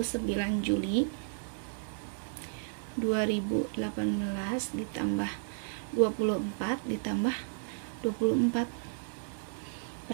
Juli 2018 ditambah 24 ditambah 24.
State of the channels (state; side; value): silent; left; 56 dB below the other